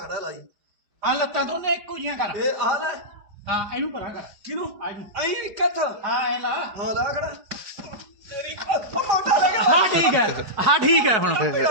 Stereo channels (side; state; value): left; late; 4.9 ms